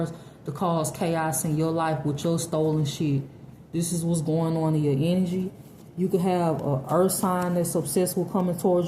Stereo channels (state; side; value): identical; both; correlation 1.00